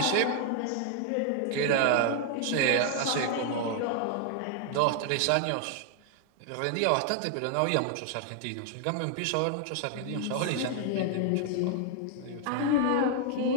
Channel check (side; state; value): both; different; correlation 0.00